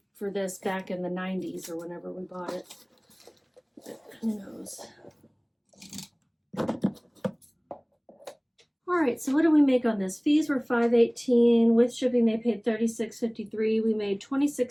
for this back in the 90s or whenever we bought it. But who knows? All right, so what did we make on this? Fees were $5.18. With shipping, they paid $36.53. We made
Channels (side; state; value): both; identical; correlation 1.00